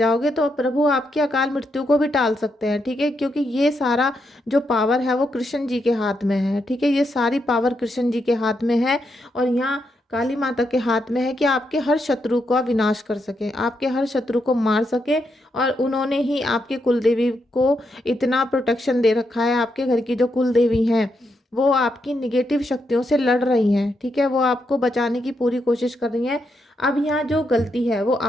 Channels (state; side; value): normal; both; correlation 0.81